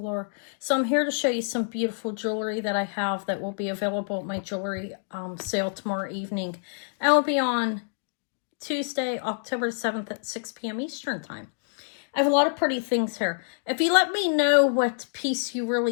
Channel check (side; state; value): right; silent; digital silence